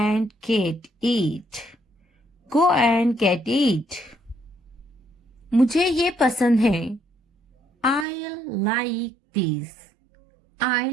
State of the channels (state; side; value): drops out; left; at 8.1 s